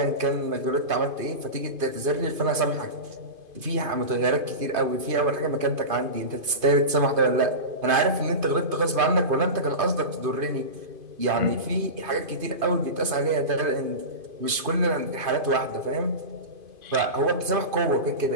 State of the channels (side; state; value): left; late; 2.5 ms